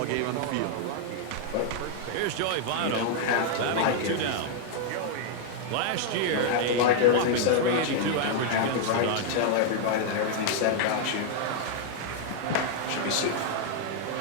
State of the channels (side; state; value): both; different; correlation 0.00